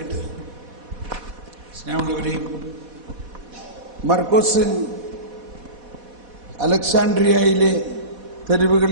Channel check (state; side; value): late; left; 4.1 ms